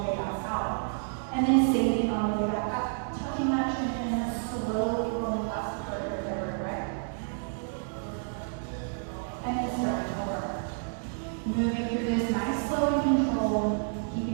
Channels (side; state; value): left; silent; digital silence